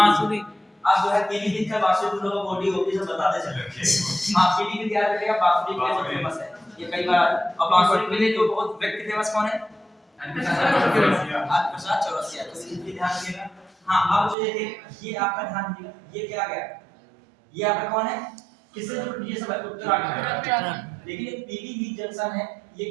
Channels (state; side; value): drops out; left; at 14.4 s